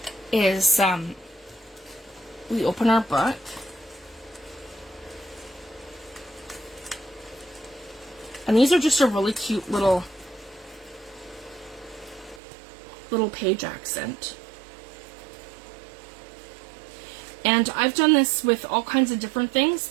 is we open our book. And these are just a really cute little page accent. And I've done this with all kinds of different things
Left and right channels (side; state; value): left; drops out; at 12.4 s